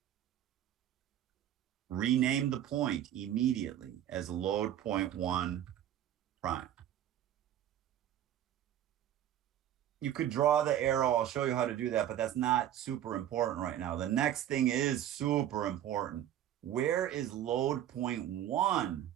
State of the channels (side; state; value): left; quieter; 11.4 dB